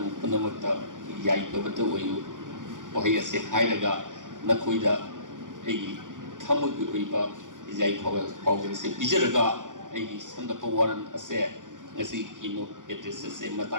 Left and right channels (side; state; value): left; late; 0.88 ms